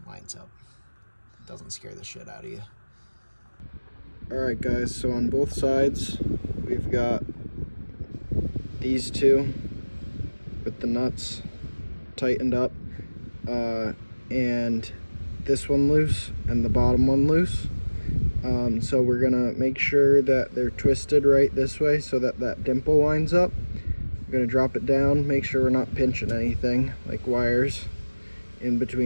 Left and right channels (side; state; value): both; inverted; correlation -1.00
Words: lines up. It doesn't scare the shit out of you. Alright guys, so on both sides, we've got these 2 with the nuts tightened up, and this one loose, and the bottom one loose. So we're gonna make sure that they're twisted right this way so that that dimple lines up. We're gonna drop it down, make sure we're not pinching anything like wires in